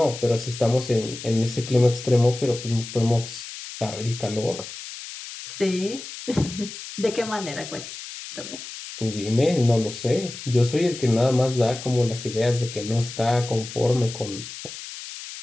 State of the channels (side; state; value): left; noise; hiss, 11 dB below the sound